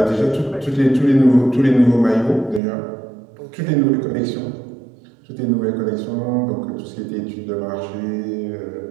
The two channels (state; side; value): drops out; left; at 2.6 s